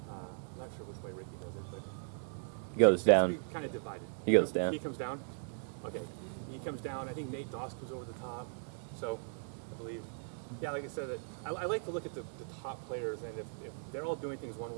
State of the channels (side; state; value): left; silent; digital silence